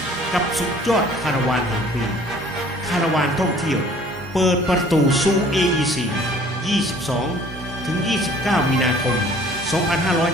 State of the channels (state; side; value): normal; both; correlation 0.53